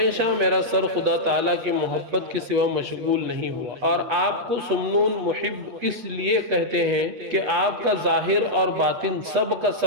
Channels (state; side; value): late; left; 8.2 ms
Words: میرا سر خدا تعالیٰ کی محبت کے سوا مشغول نہیں ہوا، اور آپ کو سمنون محب اس لیے کہتے ہیں کہ آپ کا ظاہر اور باطن سب کا